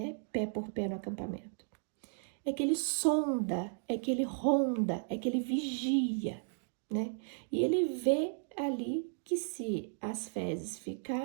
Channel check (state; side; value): silent; left; digital silence